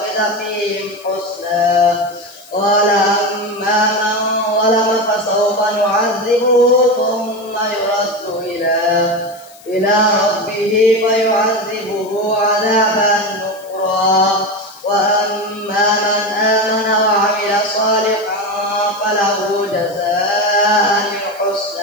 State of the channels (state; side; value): noise; left; hiss, 24 dB below the sound